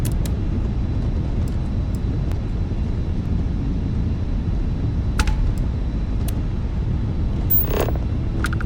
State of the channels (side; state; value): both; identical; correlation 1.00